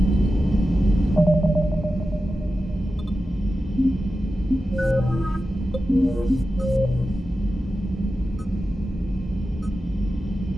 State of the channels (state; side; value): normal; both; correlation 0.92